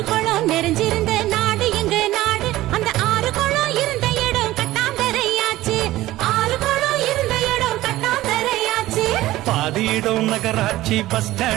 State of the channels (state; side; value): quieter; left; 16.3 dB